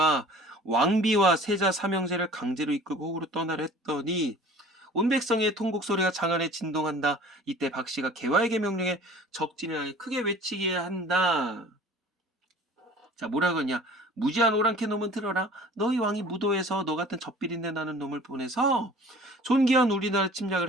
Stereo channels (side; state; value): both; normal; correlation 0.46